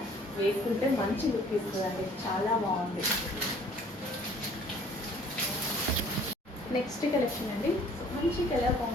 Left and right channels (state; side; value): normal; both; correlation 0.55